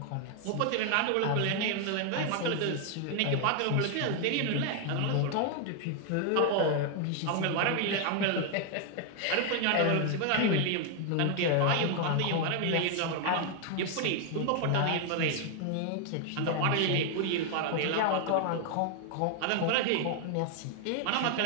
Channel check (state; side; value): different; both; correlation 0.00